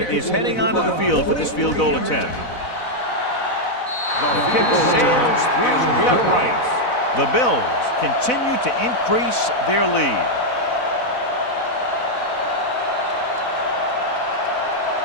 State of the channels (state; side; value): late; right; 4.0 ms